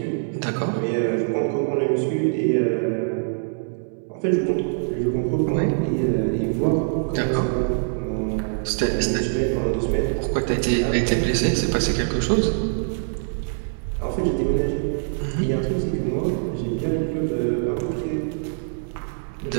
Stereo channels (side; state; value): left; silent; digital silence